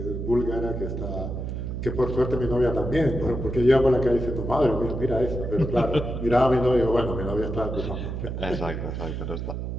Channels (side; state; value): right; noise; hum, 4 dB below the sound